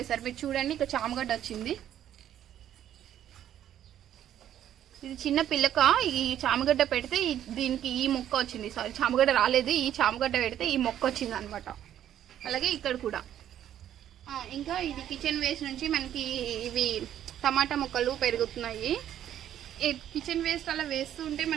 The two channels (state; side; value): quieter; left; 10.9 dB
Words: మీరు చూడండి ఇక్కడ చామగడ్డ వచ్చింది. ఇది చిన్న పిల్లక. ఈ చామగడ్డ పెడితే దీనికి ఈ మొక్క వచ్చింది. సారీ, చామగడ్డ రాలేదు. ఈ చామగడ్డ పెడితే ఈ మొక్క వచ్చింది అనమాట. అలాగే ఇక్కడ కూడా. ఇంకా ఇది కిచెన్ వేస్ట్ నుంచి మనకి ఇవి టమాటా మొక్కలు పెరుగుతున్నాయి. కిచెన్ వేస్ట్ అలా వేస్తూ ఉంటే